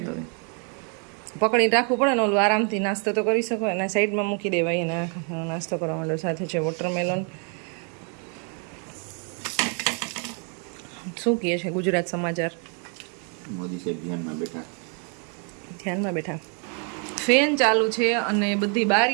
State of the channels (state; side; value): quieter; left; 39.4 dB